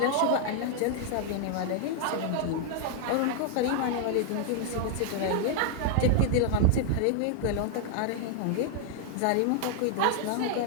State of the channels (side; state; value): both; different; correlation 0.00